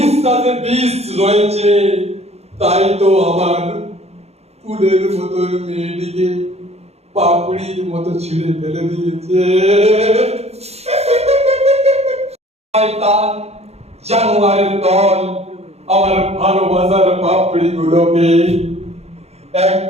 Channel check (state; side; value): late; left; 0.31 ms